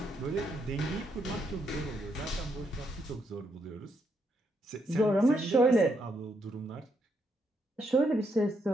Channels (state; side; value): normal; both; correlation 0.77